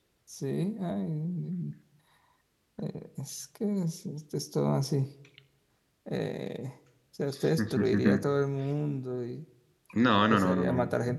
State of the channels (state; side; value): identical; both; correlation 1.00